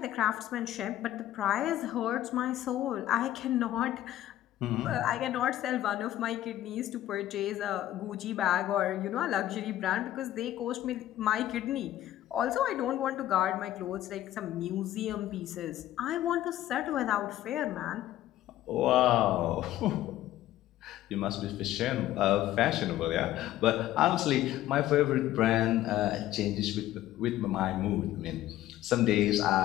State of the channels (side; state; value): right; quieter; 13.7 dB